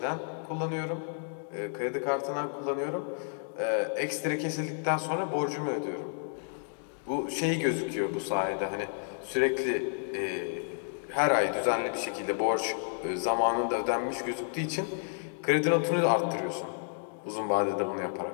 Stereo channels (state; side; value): silent; right; digital silence